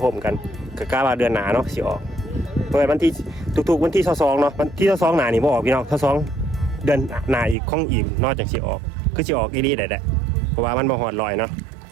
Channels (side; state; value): left; drops out; at 7.6 s